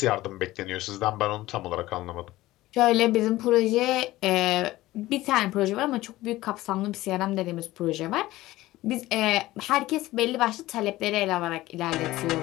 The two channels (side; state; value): right; quieter; 17.2 dB